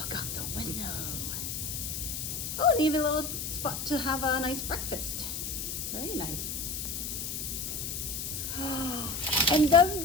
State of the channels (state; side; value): noise; left; hiss, 4 dB below the sound